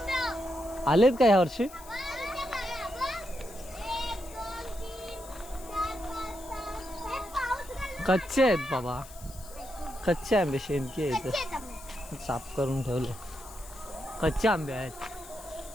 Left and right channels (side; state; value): left; noise; hiss, 19 dB below the sound